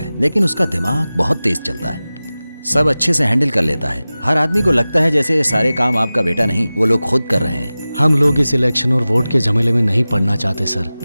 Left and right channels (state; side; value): inverted; both; correlation -0.97